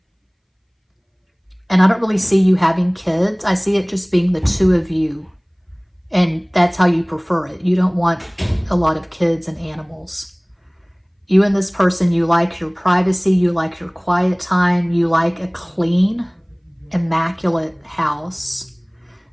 I don't really see you having kids. I see it just being the two of you. And that's how you prefer it. You don't want a lot of kids and animals. You and this person, you like your privacy, you like your quiet time, you like a clean, immaculate house.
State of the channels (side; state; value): both; identical; correlation 1.00